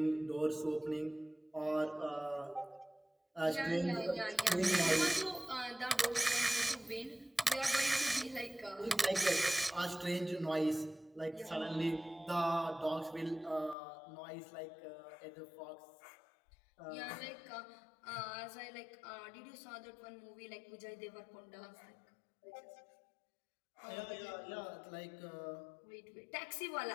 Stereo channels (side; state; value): right; drops out; at 13.8 s